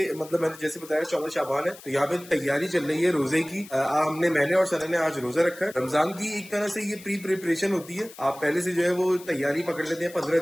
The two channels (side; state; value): left; noise; hiss, 19 dB below the sound